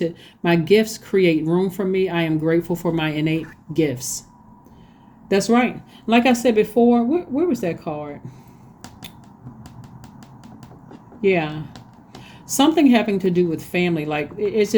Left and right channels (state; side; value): identical; both; correlation 1.00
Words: My gifts create room for me. I am grateful for my innate gifts. That's right. Like I said before, where was that card? Yeah. Something having to do with family. Like it's